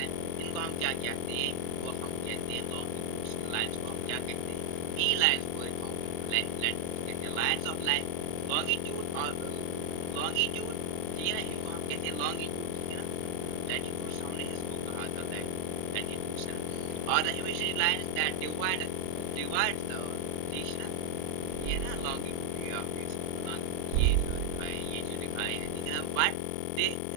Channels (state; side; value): different; both; correlation 0.00